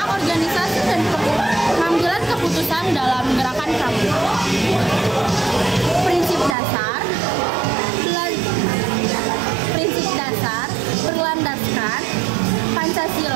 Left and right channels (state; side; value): drops out; left; at 6.6 s